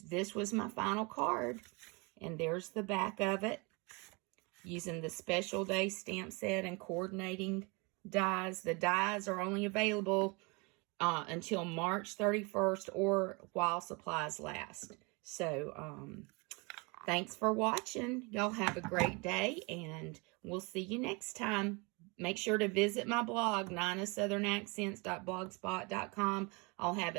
this was my final card. And there's the back of it. Using the Special Day stamp set and coordinating dies. The dies are only available until March 31st or while supplies last. So, thanks for watching. Y'all have a great day, and we'll see you next time. Make sure to visit my blog, ninasouthern.blogspot.com. I'll have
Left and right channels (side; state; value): left; quieter; 29.0 dB